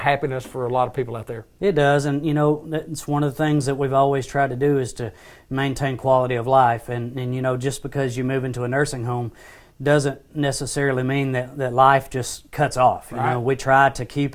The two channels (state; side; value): identical; both; correlation 1.00